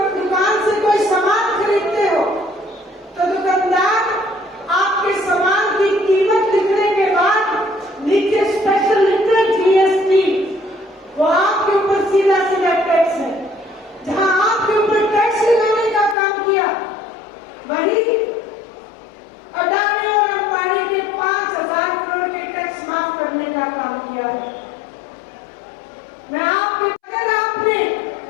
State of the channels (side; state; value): right; drops out; at 16.2 s